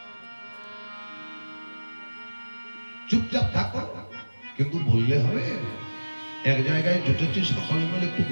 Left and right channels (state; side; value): inverted; both; correlation -1.00